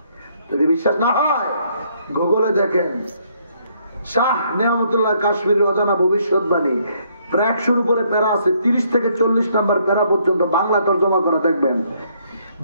যদি বিশ্বাস না হয় গুগলে দেখেন, শাহ নিয়ামতুল্লাহ কাশ্মীরের অজানা ভবিষ্যৎবাণী, প্রায় 100-র উপরে প্যারা আছে, 30 থেকে 40 নাম্বার প্যারা পর্যন্ত বাংলা তর্জমা করে দেখবেন।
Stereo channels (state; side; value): inverted; both; correlation -0.69